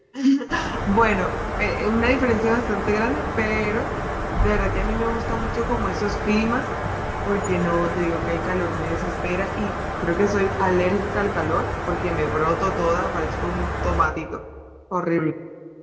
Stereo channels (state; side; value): identical; both; correlation 1.00